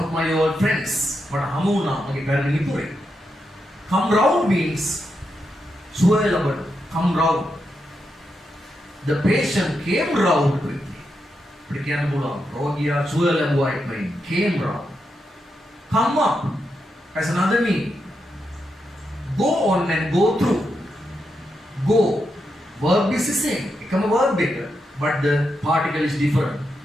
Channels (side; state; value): both; normal; correlation 0.84